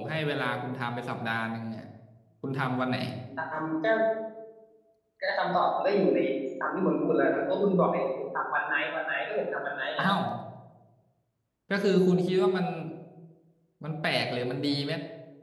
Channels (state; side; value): identical; both; correlation 1.00